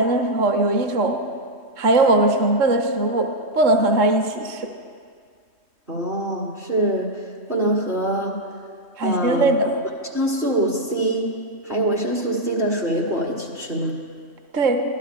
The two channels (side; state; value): left; late; 3.1 ms